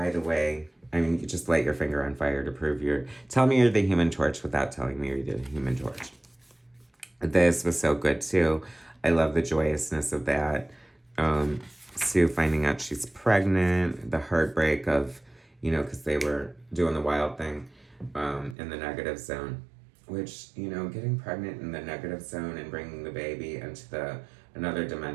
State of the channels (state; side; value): drops out; left; at 18.6 s